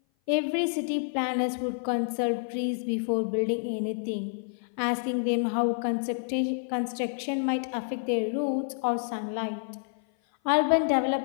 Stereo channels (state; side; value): silent; right; 56 dB below the other